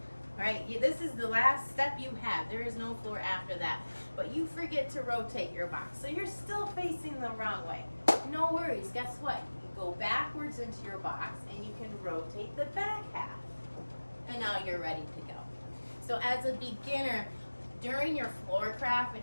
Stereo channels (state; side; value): inverted; both; correlation -1.00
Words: right? This is the last step you have. There is no floor after that, but you forget to rotate your box. So you're still facing the wrong way. No worries, guess what? You can go backwards into your box and you can rotate the back half. And now you're ready to go. So as a beginner, during your floor craft